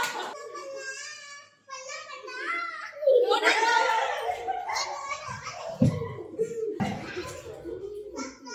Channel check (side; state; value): both; identical; correlation 1.00